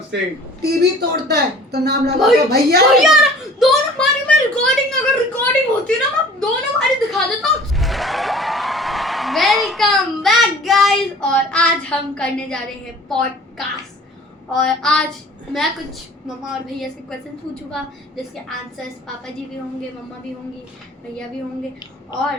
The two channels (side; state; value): both; normal; correlation 0.47